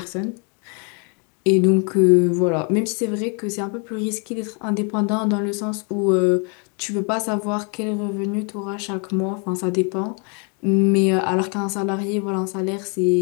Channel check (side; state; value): right; quieter; 36.4 dB